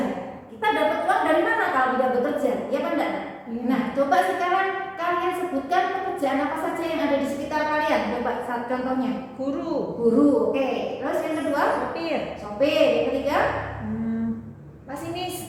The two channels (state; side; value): identical; both; correlation 1.00